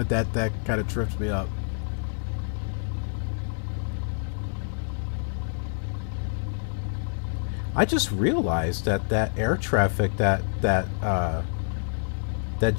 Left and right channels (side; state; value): right; silent; 60 dB below the other